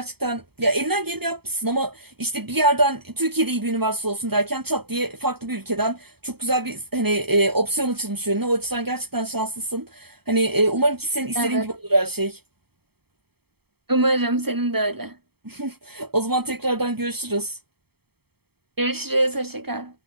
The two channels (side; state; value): left; late; 0.96 ms